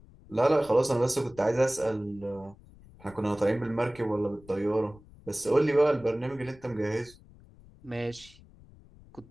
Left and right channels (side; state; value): left; noise; rumble, 23 dB below the sound